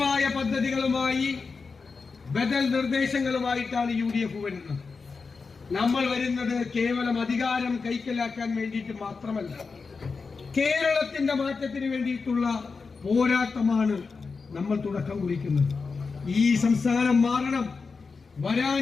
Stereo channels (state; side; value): quieter; right; 4.7 dB